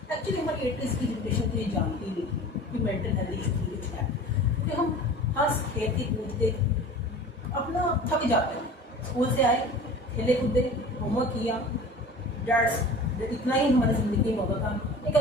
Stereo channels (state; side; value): normal; both; correlation 0.40